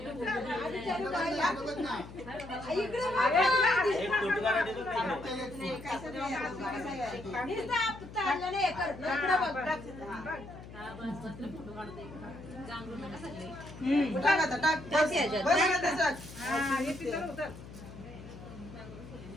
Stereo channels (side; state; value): left; noise; hum, 15 dB below the sound